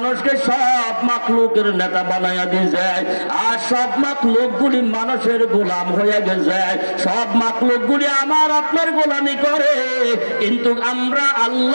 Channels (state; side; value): inverted; both; correlation -1.00